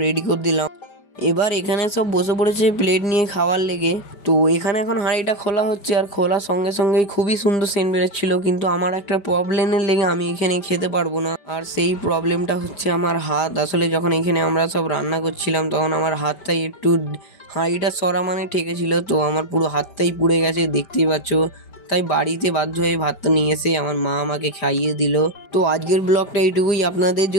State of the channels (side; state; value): right; late; 5.1 ms